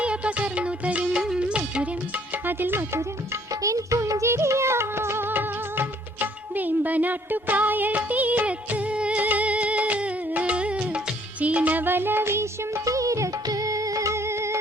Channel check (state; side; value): normal; both; correlation 0.62